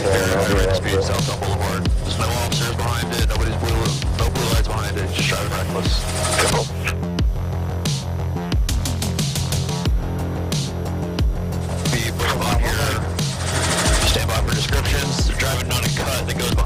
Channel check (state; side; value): identical; both; correlation 1.00